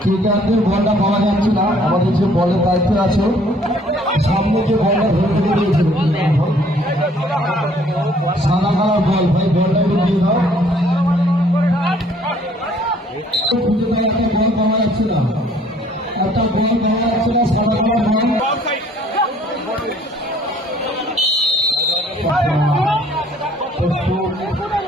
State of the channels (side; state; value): both; normal; correlation 0.59